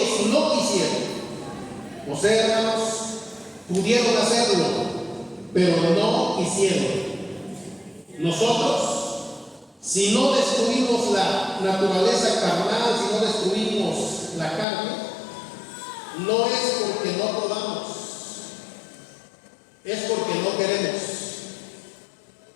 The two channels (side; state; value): right; drops out; at 14.7 s